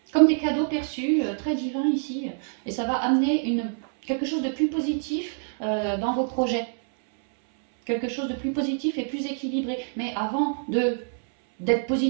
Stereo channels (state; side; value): silent; left; 61 dB below the other